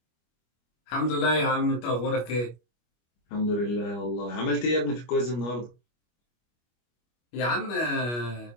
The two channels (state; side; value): late; right; 25 ms